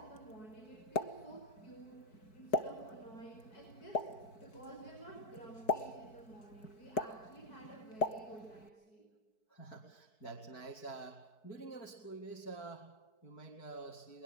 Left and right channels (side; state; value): right; late; 4.6 ms